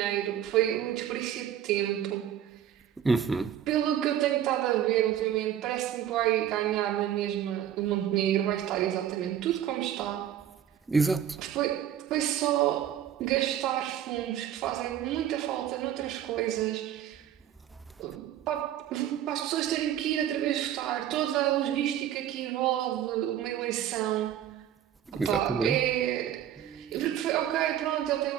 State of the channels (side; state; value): left; quieter; 10.5 dB